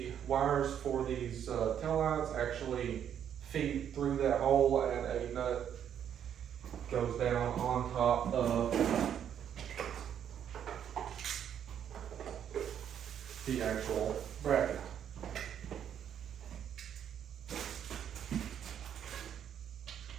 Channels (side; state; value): left; quieter; 9.2 dB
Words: wires for these tail lights actually feed through that hole, and a nut goes down on top of the actual bracket.